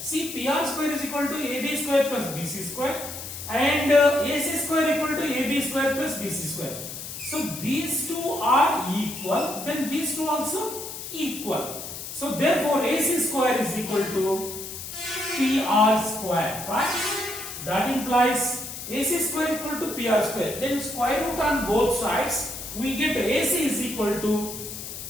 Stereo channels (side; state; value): left; noise; hiss, 9 dB below the sound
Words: PR square is equal to AB square plus BC square and AC square equal to AB square plus BC square. So these two are equal, then these two also equal. So therefore AC square is equal to PR square, right? That implies AC square equal to PR square. Then square root on both sides, we get AC is equal to